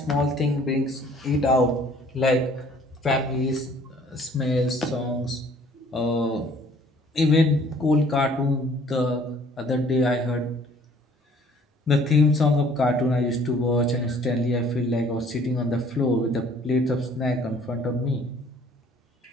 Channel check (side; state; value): both; normal; correlation 0.56